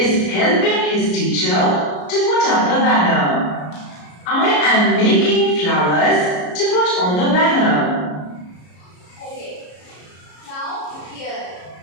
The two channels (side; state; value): right; late; 33 ms